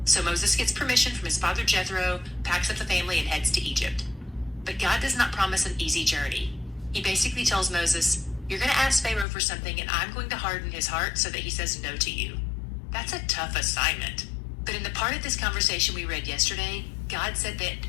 So Moses gets permission from his father Jethro, packs up the family, and heads to Egypt. But God does not promise an easy journey. He basically tells Moses, you're going to ask Pharaoh for something, and I'm going to harden his heart so that he says no to you. That's a tough assignment. But in the part of this conversation we read yesterday, God said that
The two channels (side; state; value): right; drops out; at 9.2 s